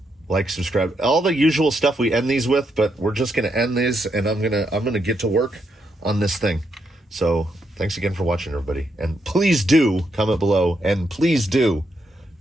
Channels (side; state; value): both; normal; correlation 0.80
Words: like, subscribe, all the usual stuff we end these with, but we're just going to end these, and I'm going to get to work on this thing. So thanks again for watching, everybody. And please do comment below, and please do